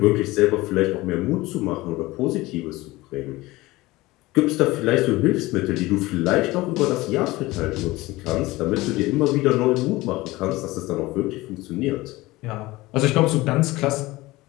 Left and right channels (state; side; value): quieter; right; 19.8 dB